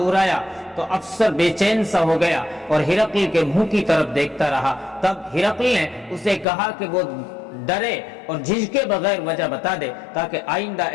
تو افسر بے چین سا ہو گیا اور ہرقل کے منہ کی طرف دیکھتا رہا۔ تب ہرقل نے اسے کہا کہ وہ ڈرے اور جھجکے بغیر وجہ بتا دے تاکہ آئندہ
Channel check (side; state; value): right; drops out; at 6.5 s